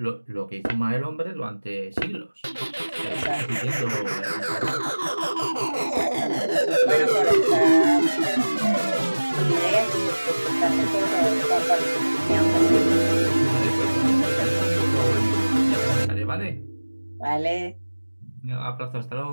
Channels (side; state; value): both; inverted; correlation -1.00